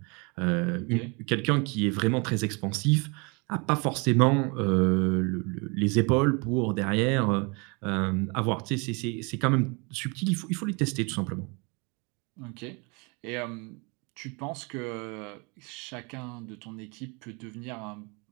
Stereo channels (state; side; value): quieter; left; 30.5 dB